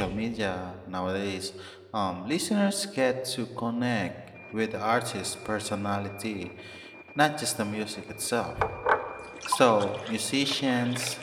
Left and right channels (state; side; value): identical; both; correlation 1.00